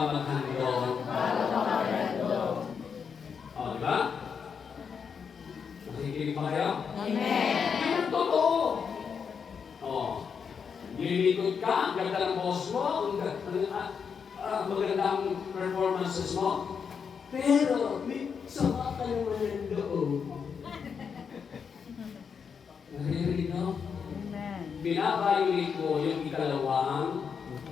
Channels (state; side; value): quieter; right; 6.5 dB